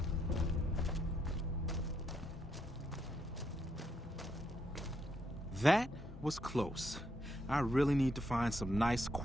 That was close. I really need to find some nice,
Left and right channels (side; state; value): both; normal; correlation 0.77